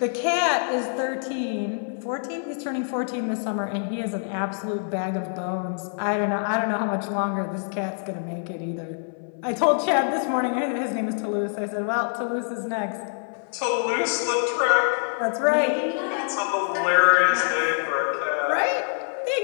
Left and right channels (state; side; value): silent; right; 60 dB below the other